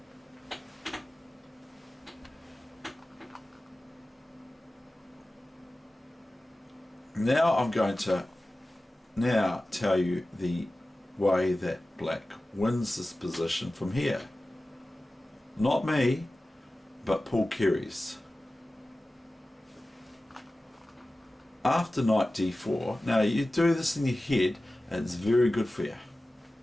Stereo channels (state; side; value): normal; both; correlation 0.96